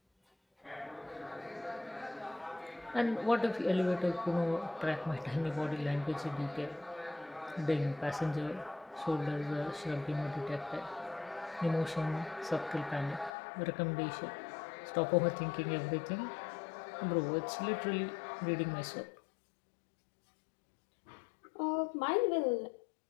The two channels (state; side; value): drops out; right; at 13.3 s